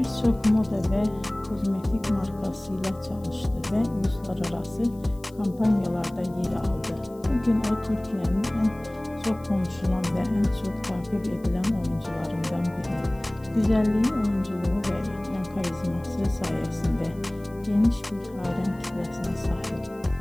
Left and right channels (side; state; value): left; noise; hiss, 28 dB below the sound